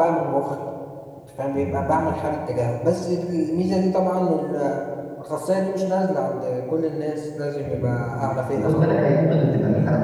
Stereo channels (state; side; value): identical; both; correlation 1.00